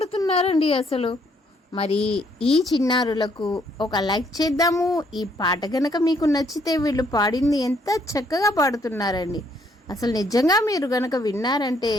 అసలు. మరి ఈ చిన్నారులకు ఒక లైక్ చేద్దాము. ఈ పాట కనుక మీకు నచ్చితే వీళ్ళు పాడింది ఎంత చక్కగా పాడుతున్నారండి. అసలు నిజంగా మీరు కనుక విన్నారంటే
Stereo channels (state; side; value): normal; both; correlation 0.69